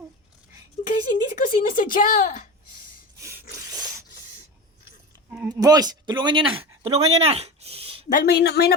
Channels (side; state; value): both; normal; correlation 0.27